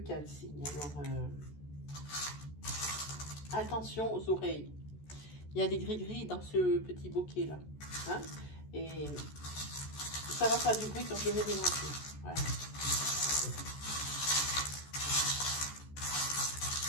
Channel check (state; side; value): late; right; 14 ms